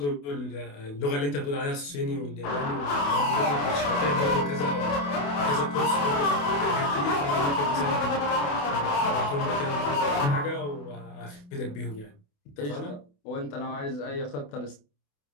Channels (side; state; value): right; late; 28 ms